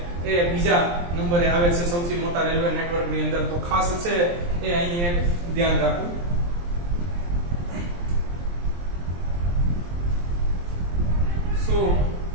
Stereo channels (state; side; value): late; left; 23 ms